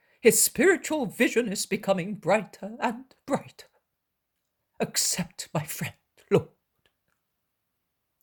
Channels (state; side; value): identical; both; correlation 1.00